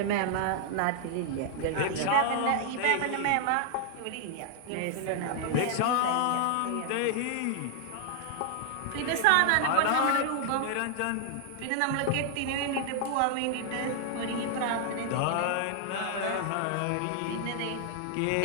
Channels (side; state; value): both; different; correlation 0.00